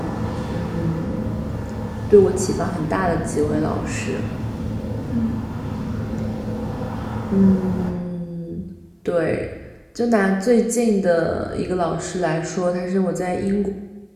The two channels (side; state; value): both; identical; correlation 1.00